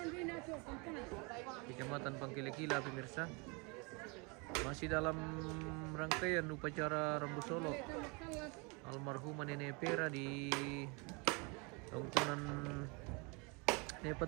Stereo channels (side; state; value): left; quieter; 30.4 dB